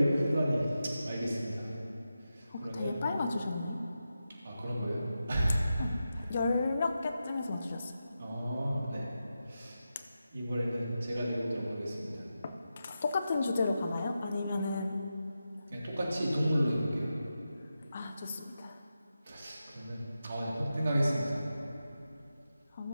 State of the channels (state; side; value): inverted; both; correlation -0.90